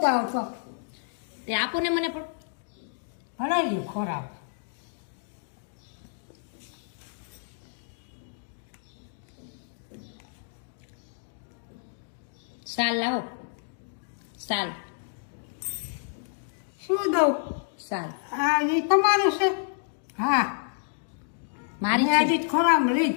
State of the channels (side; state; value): right; silent; digital silence